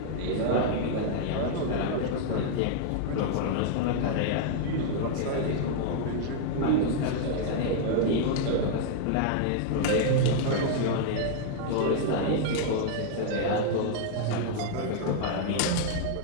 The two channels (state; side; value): different; both; correlation -0.01